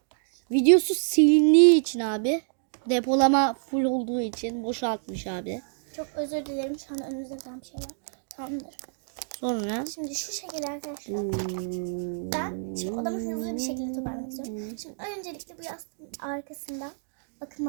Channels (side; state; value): left; silent; digital silence